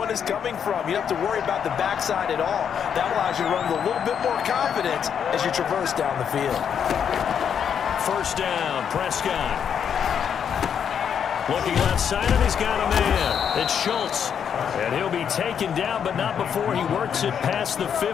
is coming from. You don't have to worry about the backside at all. That allows you to run with a little bit more confidence as you traverse down the field. 1st down, Prescott. Looking left side, and he's got a man. It's Schultz. And he'll be taken down, but not before he works it past the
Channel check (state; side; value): quieter; right; 7.9 dB